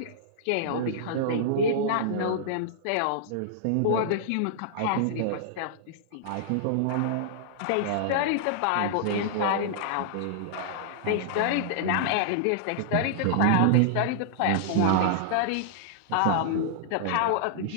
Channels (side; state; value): both; different; correlation -0.01